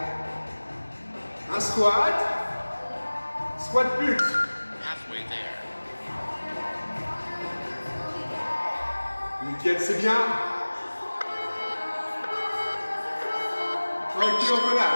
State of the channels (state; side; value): inverted; both; correlation -1.00